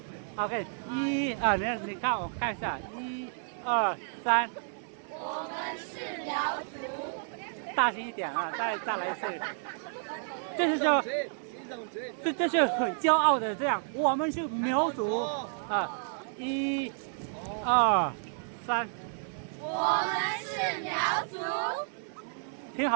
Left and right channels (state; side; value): silent; left; digital silence